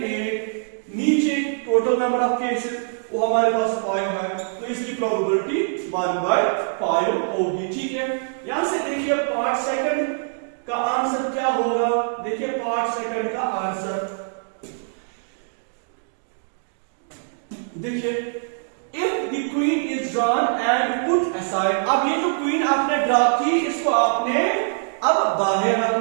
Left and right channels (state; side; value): silent; left; digital silence